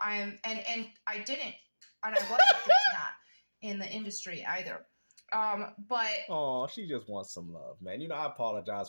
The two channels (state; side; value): inverted; both; correlation -1.00